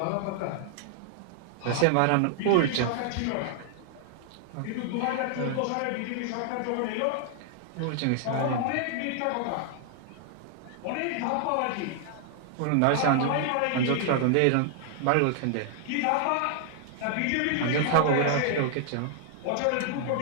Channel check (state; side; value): different; both; correlation 0.00